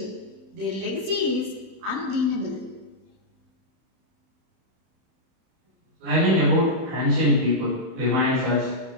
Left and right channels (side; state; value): left; late; 31 ms